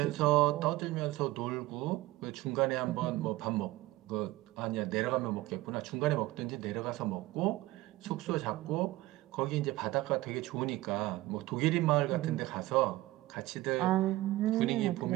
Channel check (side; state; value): left; quieter; 18.0 dB